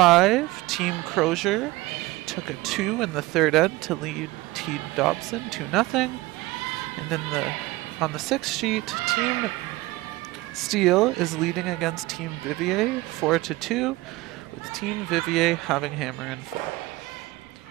Team Crozier took a 2 in the third end to lead Team Dobson 2-0. And on the sixth sheet, Team Steele is leading against Team Vivier 4-2, with Team Vivier having hammer and 4.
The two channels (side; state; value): left; quieter; 19.9 dB